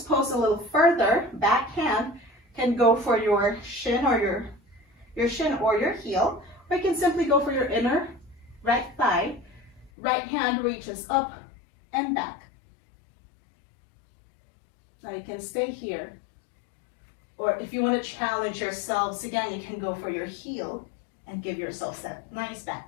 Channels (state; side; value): drops out; right; at 9.9 s